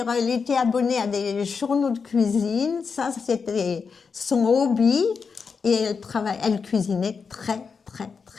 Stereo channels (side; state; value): right; quieter; 5.5 dB